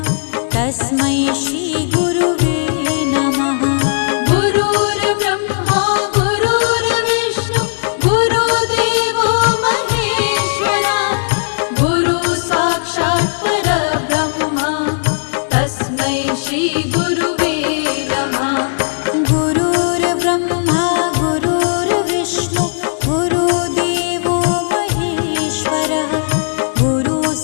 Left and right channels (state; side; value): silent; right; digital silence